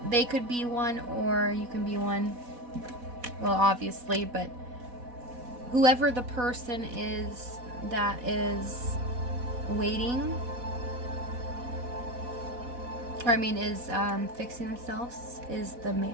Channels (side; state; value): left; late; 4.1 ms